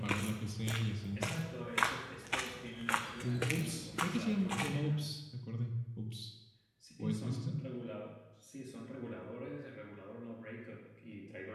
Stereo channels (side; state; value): both; identical; correlation 1.00